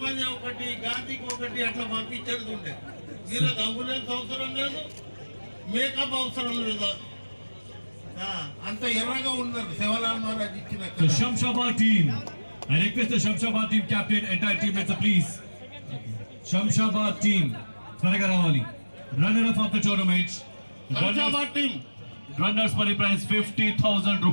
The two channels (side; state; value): both; inverted; correlation -1.00